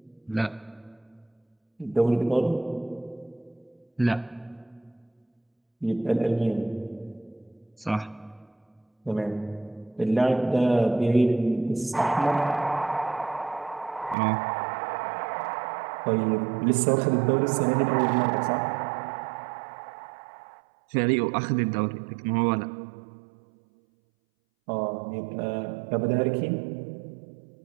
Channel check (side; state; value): left; drops out; at 14.2 s